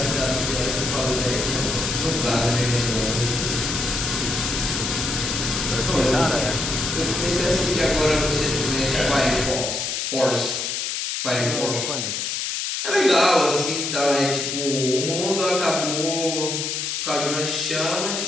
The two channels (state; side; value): noise; left; hiss, 2 dB below the sound